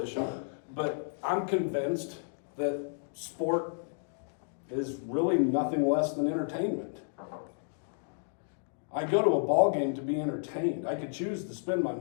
but I'm convinced that sport is really nothing less than entertainment. I go to a ball game to be entertained. I could choose to spend my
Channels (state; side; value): silent; right; digital silence